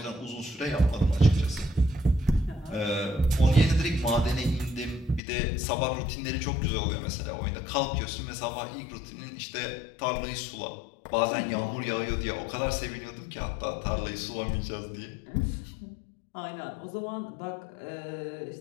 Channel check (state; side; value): drops out; right; at 5.2 s